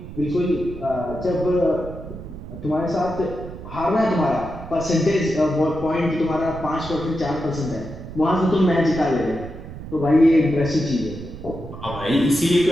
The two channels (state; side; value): noise; right; rumble, 12 dB below the sound